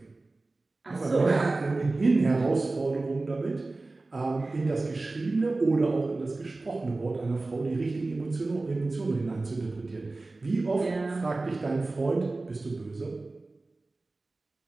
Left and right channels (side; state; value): left; quieter; 3.3 dB